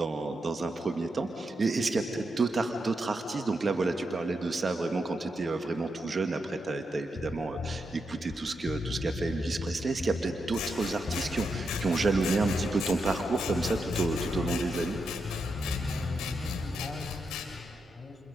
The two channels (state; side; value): normal; both; correlation 0.85